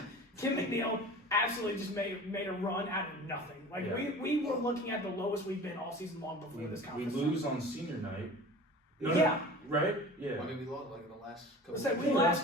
Kim McNeil absolutely just made a run out of nothing. We were looking at the lowest we've been all season long before this conference. We lose on senior night. Right? Yeah. I mean, we lost in the last couple. We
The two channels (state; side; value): normal; both; correlation 0.39